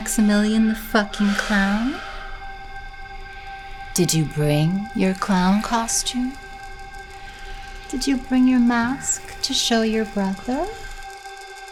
the fucking clown? Did you bring your clown costume? Did you bring your mask to show your brother?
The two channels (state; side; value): identical; both; correlation 1.00